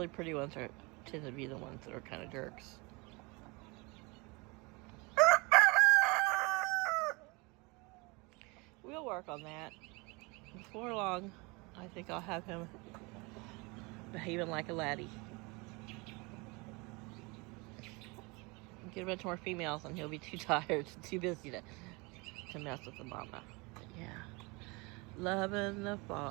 pretty ones tend to be the ones that are kind of jerks. We'll work on that. Before long, I think I'll have him behaving like a laddie. Get a bunch more females and he'll be too tired, too busy to mess with the mama. But yeah, loving the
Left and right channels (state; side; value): quieter; left; 27.1 dB